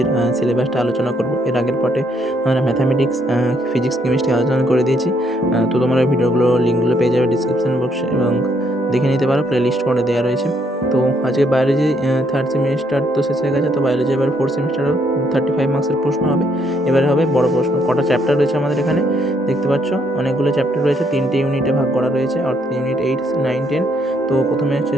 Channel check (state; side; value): normal; both; correlation 0.71